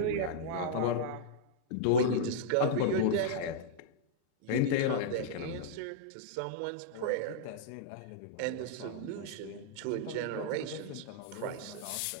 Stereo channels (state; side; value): different; both; correlation -0.02